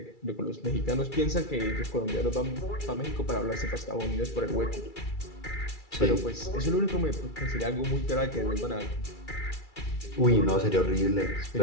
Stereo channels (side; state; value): right; late; 2.3 ms